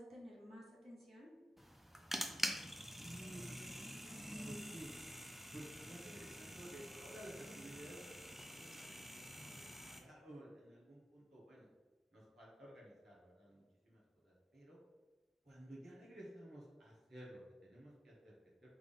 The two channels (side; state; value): both; normal; correlation 0.90